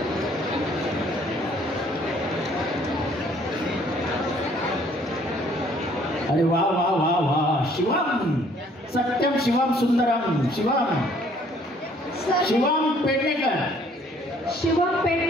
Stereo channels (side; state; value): both; normal; correlation 0.60